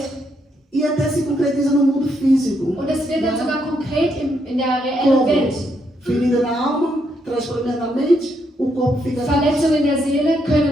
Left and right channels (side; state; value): both; normal; correlation 0.77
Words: e até se concretiza no mundo físico. Und es wird dann sogar konkret in der reellen Como? Welt. Ferida na alma, traz problemas na mente, o corpo fica... Verletzungen in der Seele